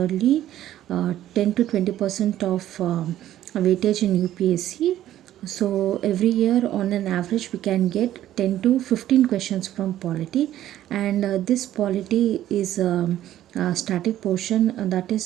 10 to 20% of weightage in UPSC. So every year on an average we can get 10 to 15 questions from polity, and this polity is static portion. That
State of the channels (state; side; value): quieter; left; 12.7 dB